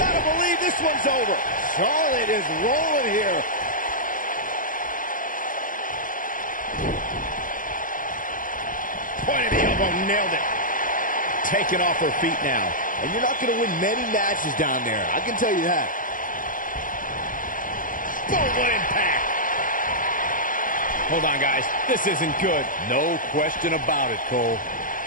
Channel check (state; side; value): late; right; 0.39 ms